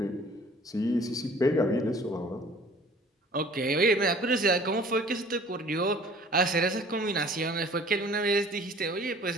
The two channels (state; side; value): normal; both; correlation 0.50